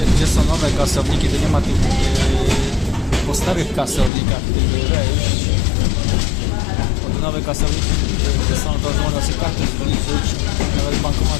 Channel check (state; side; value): drops out; right; at 4.1 s